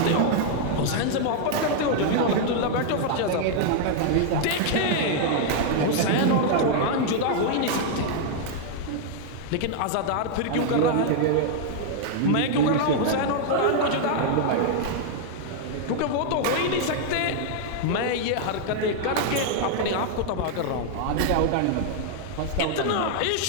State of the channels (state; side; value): different; both; correlation 0.00